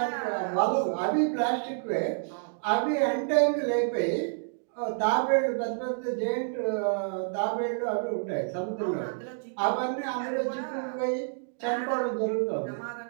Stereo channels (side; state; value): left; silent; digital silence